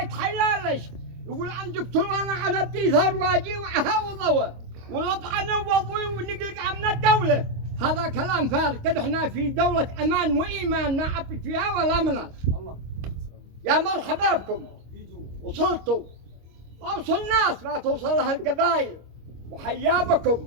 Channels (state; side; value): late; left; 25 ms